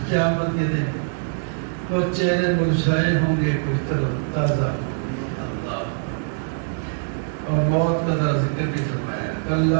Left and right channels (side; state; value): left; silent; digital silence